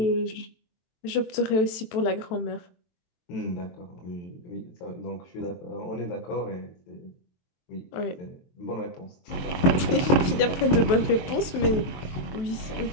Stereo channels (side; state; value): right; late; 23 ms